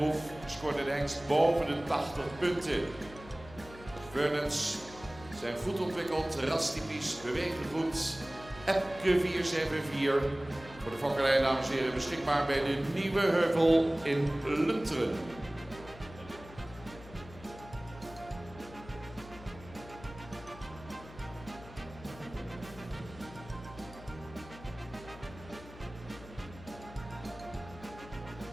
scoorde de hengst boven de 80 punten. Vernons zijn goed ontwikkeld, rastypisch, bewegen goed. Epke 474. Voor de fokkerij, dames en heren, beschikbaar bij de Nieuwe Heuvel in Lunteren.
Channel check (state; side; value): noise; left; hum, 17 dB below the sound